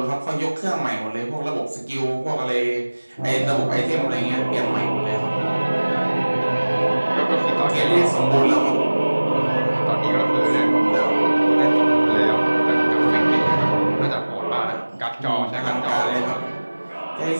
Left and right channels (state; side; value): inverted; both; correlation -1.00